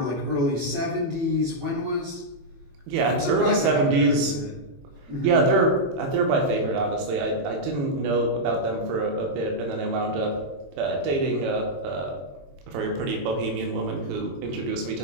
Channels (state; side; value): late; left; 22 ms